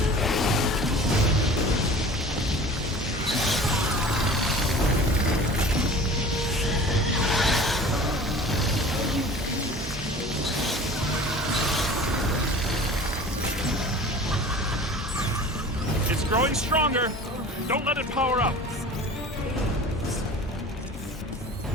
It's growing stronger. Don't let it power up.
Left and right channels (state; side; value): normal; both; correlation 0.42